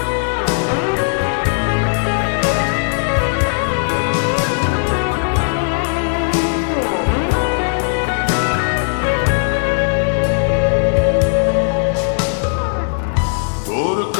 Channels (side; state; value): right; silent; digital silence